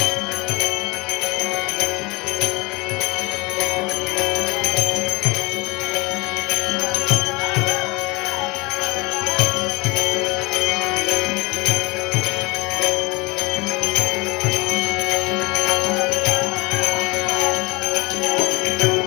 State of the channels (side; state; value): right; quieter; 25.1 dB